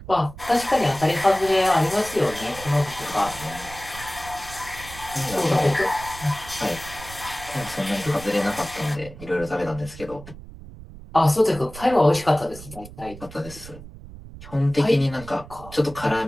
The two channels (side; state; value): right; noise; rumble, 16 dB below the sound